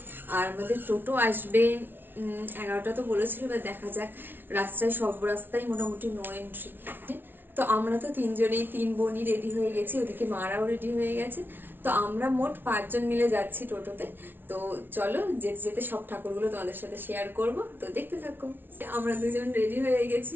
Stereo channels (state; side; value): late; left; 0.099 ms